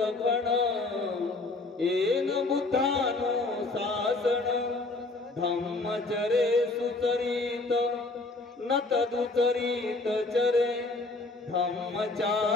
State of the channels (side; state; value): right; quieter; 3.2 dB